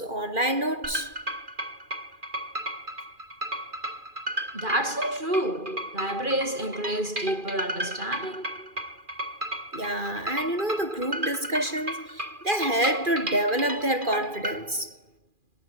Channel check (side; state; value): left; late; 2.4 ms